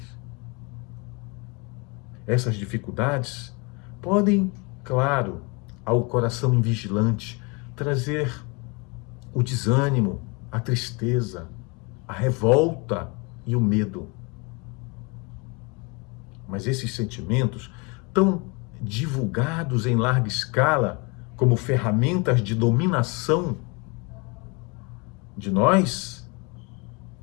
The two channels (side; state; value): right; quieter; 29.9 dB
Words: Essas dificuldades podem, claro, ao coração invigilante, trazer o desânimo, a tristeza, a revolta e o medo. Mas esses sentimentos, tão divulgados em larga escala como ferramentas de dominação de nós,